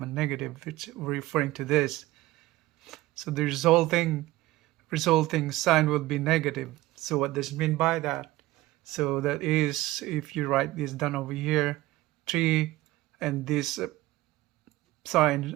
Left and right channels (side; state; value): left; quieter; 17.5 dB